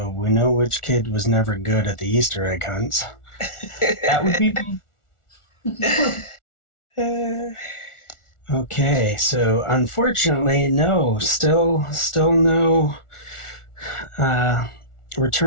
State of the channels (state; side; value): late; right; 1.4 ms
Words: we know which kid was never good at the Easter egg hunts. that would be me. Okay, so unfortunately, no, still no